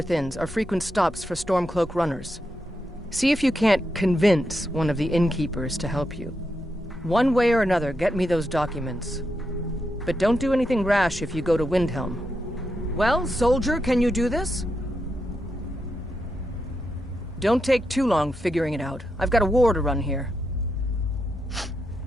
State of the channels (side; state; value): both; normal; correlation 0.85